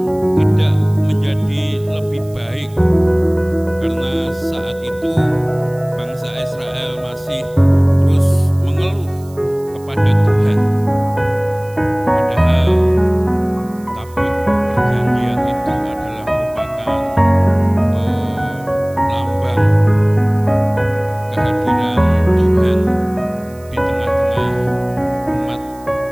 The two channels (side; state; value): right; noise; hiss, 26 dB below the sound